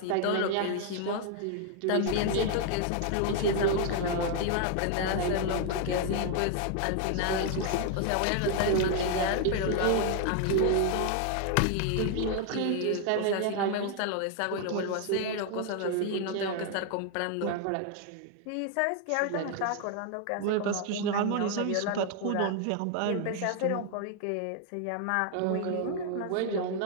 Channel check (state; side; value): different; both; correlation 0.00